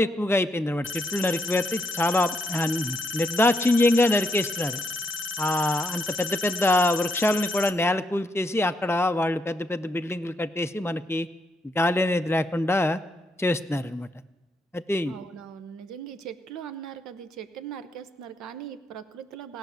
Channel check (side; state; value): both; normal; correlation 0.77